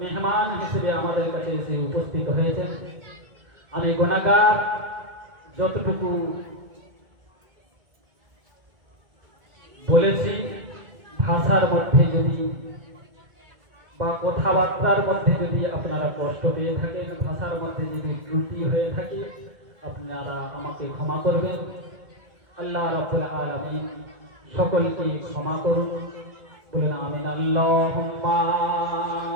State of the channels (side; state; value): left; late; 1.8 ms